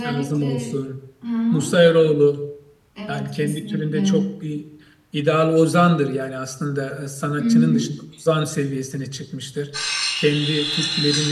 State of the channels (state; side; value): identical; both; correlation 1.00